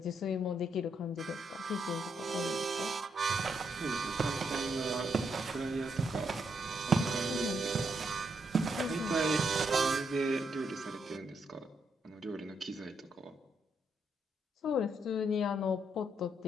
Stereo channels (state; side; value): normal; both; correlation 0.78